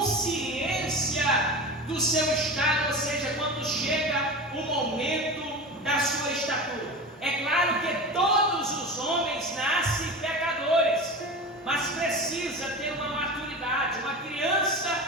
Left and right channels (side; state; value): both; normal; correlation 0.29